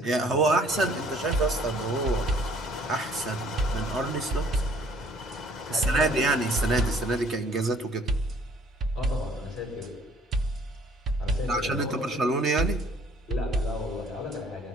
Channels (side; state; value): both; normal; correlation 0.58